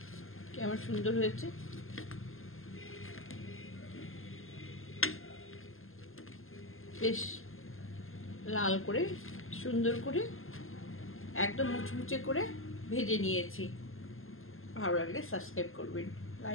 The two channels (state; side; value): late; right; 0.60 ms